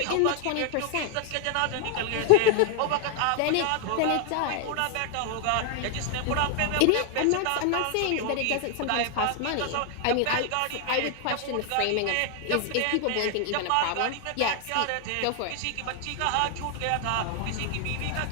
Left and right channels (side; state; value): both; different; correlation 0.00